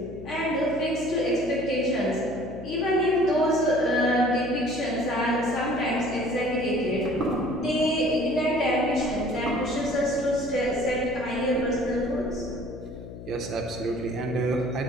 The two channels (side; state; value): left; noise; hum, 13 dB below the sound